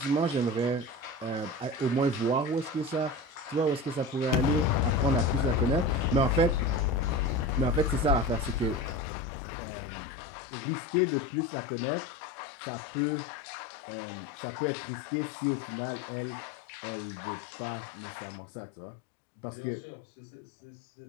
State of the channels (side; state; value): right; drops out; at 9.0 s